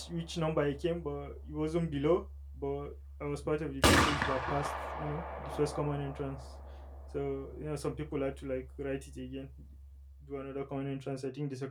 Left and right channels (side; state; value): both; identical; correlation 1.00